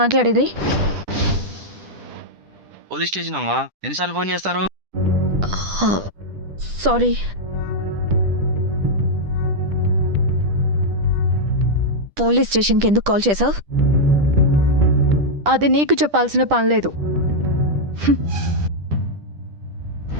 పోలీస్ స్టేషన్ అమ్మా, ఎన్నిసార్లు ఫోన్ చేస్తారు? సారీ. పోలీస్ స్టేషన్కి ఎందుకు కాల్ చేసావు? అది నీకు చెప్పాల్సిన పని లేదు.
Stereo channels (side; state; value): left; late; 10 ms